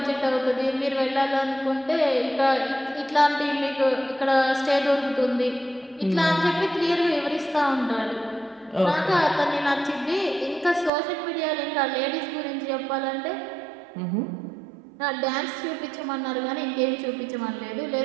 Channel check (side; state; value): left; drops out; at 10.9 s